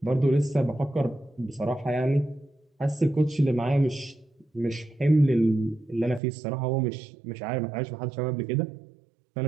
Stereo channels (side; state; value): left; drops out; at 6.2 s